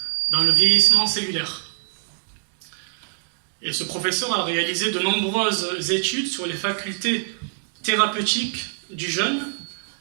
dans le vieillissement cellulaire. Et ce professeur a réalisé de nombreuses études sur les facultés thérapeutiques du jeûne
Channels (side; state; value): left; silent; digital silence